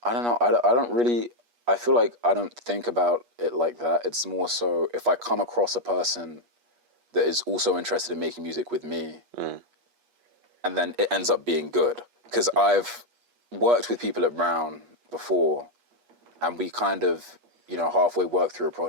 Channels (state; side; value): late; left; 8.3 ms